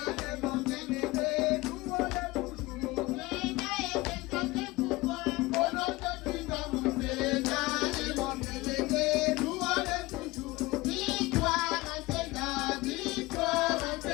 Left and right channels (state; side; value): quieter; right; 21.1 dB